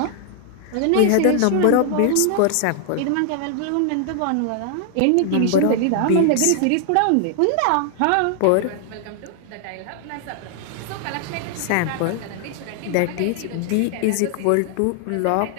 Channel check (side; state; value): both; different; correlation 0.00